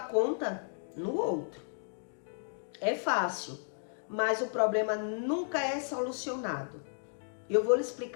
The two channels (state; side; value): silent; right; digital silence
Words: no outro. É fácil, mas o problema nunca é solucionado. Eu vou lhe